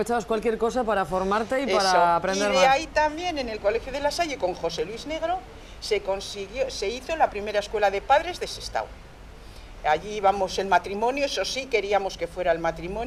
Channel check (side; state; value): both; identical; correlation 1.00